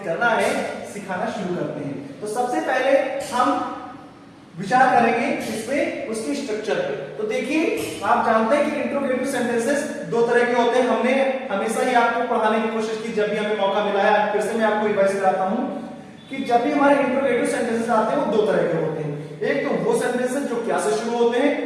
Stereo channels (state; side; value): identical; both; correlation 1.00